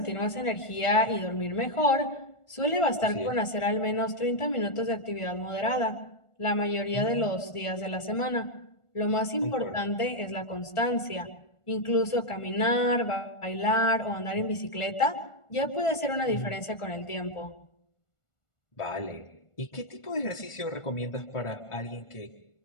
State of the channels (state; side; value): late; right; 1.4 ms